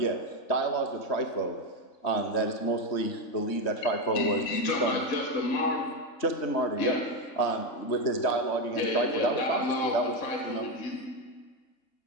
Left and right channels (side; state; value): right; late; 3.2 ms